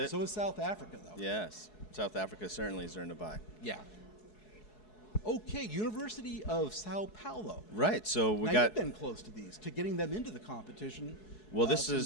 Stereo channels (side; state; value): right; late; 4.7 ms